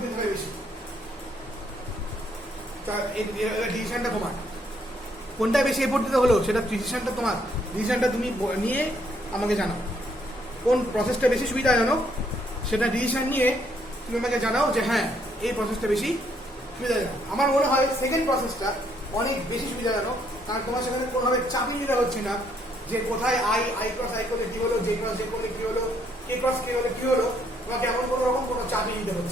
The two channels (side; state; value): both; normal; correlation 0.69